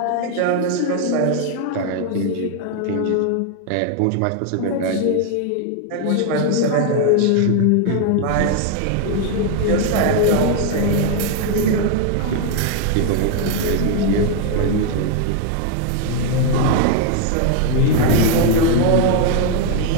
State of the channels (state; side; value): different; both; correlation 0.01